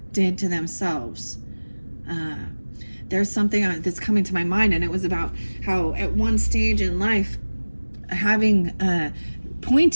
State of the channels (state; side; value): inverted; both; correlation -1.00